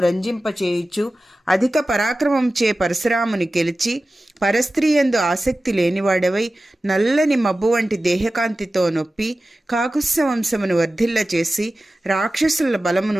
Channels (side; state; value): both; normal; correlation 0.95